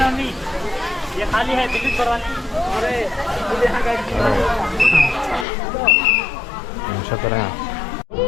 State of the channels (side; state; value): right; drops out; at 5.5 s